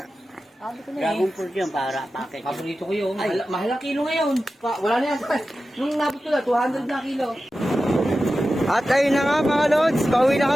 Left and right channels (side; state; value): both; normal; correlation 0.93